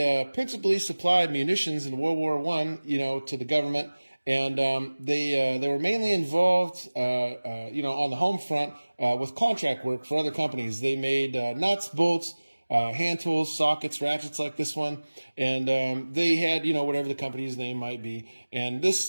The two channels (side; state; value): both; inverted; correlation -1.00